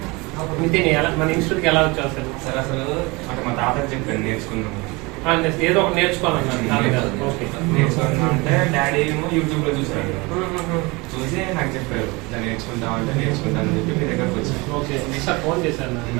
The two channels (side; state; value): left; quieter; 25.3 dB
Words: నితిన్ మన ఇన్స్టిట్యూట్కి ఎలా వచ్చావు అసలు సార్ అసలు అంటే మా తాతకి చెప్పాను నేర్చుకున్నాము ఏదో ఒకటి నేర్చుకోవాలన్నా నేర్చుకున్నా అంటే డాడీ ఏమో యూట్యూబ్ లో చూసాడు చూసి నాకు చెప్పారు ఇలా నేర్చుకుంటాం అంటే నేర్చుకుంటానని చెప్పి మీ దగ్గరకు వచ్చాను ఓకే సార్ ఫోన్ చేశాను